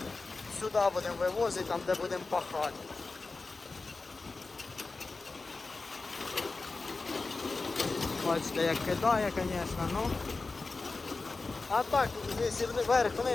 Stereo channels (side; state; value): right; quieter; 3.8 dB